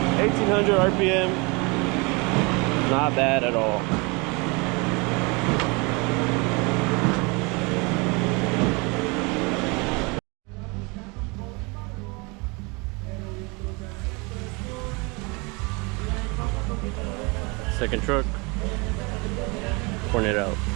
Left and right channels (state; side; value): quieter; left; 28.6 dB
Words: RPM, not bad at all. Second truck, pouring it out.